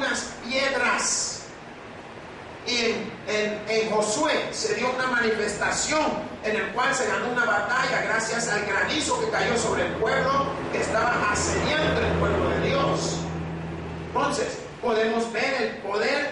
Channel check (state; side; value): identical; both; correlation 1.00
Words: piedras. Y en Josué se dio una manifestación en el cual se ganó una batalla gracias al granizo que cayó sobre el pueblo que estaba asediando el pueblo de Dios. Entonces, podemos ver el poder